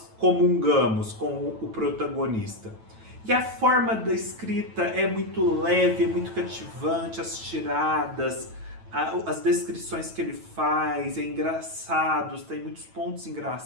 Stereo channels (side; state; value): left; late; 9.1 ms